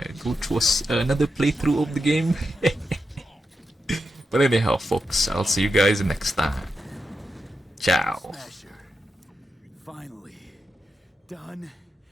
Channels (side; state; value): both; normal; correlation 0.87